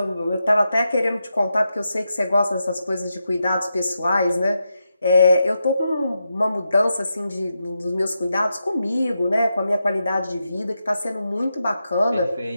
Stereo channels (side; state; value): both; inverted; correlation -0.86